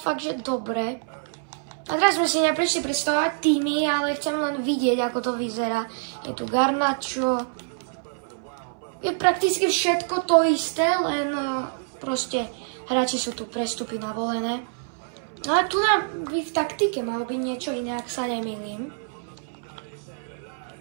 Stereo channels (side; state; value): left; silent; 61 dB below the other